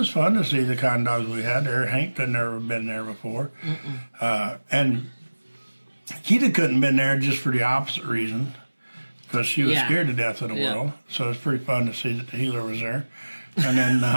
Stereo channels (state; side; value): inverted; both; correlation -1.00